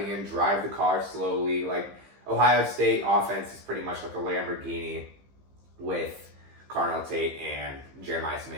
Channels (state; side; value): late; left; 15 ms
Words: him drive the car slowly. Like Ohio State offense is pretty much like a Lamborghini with Carnell Tate and Jeremiah